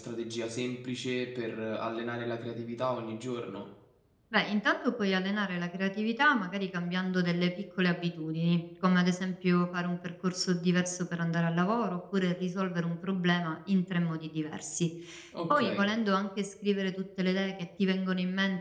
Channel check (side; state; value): both; identical; correlation 1.00